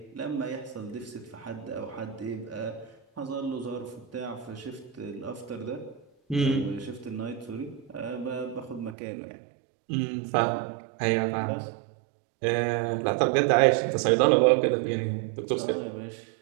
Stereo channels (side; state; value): left; drops out; at 9.0 s